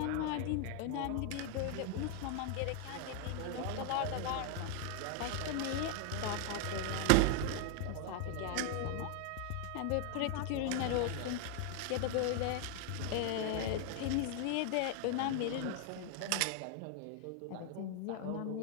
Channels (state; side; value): different; both; correlation 0.00